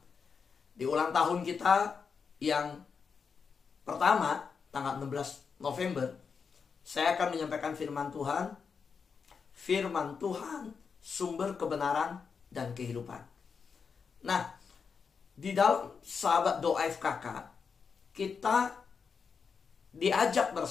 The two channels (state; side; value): quieter; right; 5.8 dB